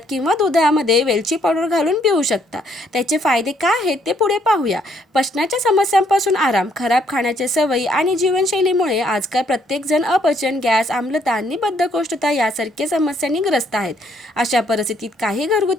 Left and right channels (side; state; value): both; normal; correlation 0.69